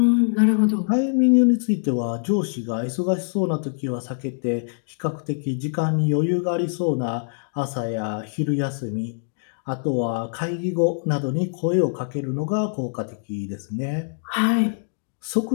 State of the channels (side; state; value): right; silent; digital silence